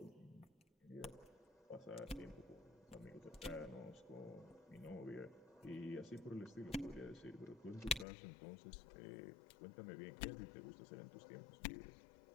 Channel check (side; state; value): right; drops out; at 8.1 s